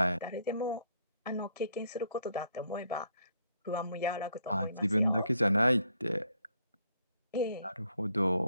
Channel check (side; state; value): both; inverted; correlation -0.70